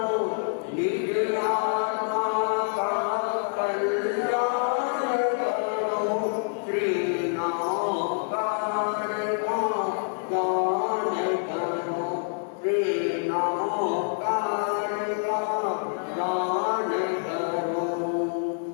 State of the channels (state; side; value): silent; right; 60 dB below the other